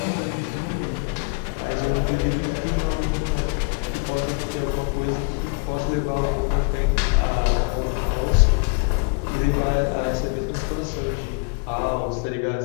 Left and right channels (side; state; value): right; quieter; 34.0 dB